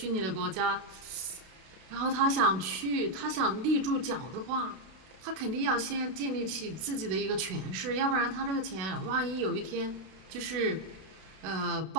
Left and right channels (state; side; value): late; left; 32 ms